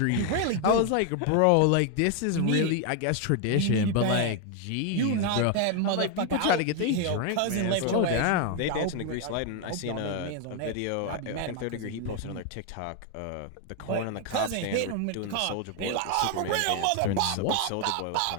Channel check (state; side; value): different; both; correlation 0.01